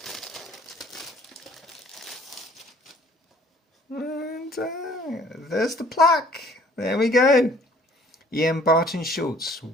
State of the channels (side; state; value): both; normal; correlation 0.57